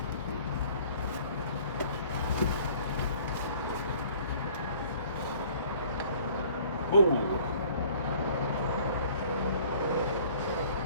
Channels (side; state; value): both; inverted; correlation -0.53